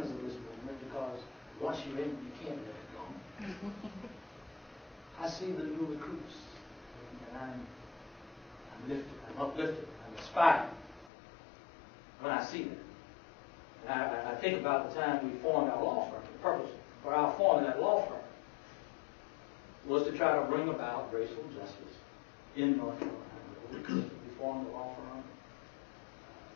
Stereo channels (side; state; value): right; drops out; at 11.1 s